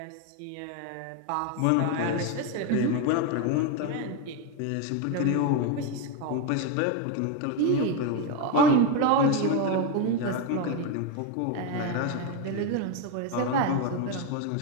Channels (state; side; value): different; both; correlation 0.02